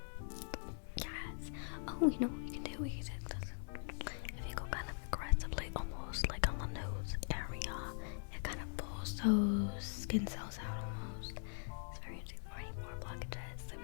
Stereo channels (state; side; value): silent; right; digital silence